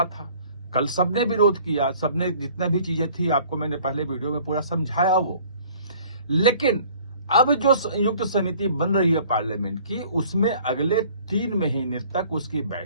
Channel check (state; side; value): inverted; both; correlation -0.53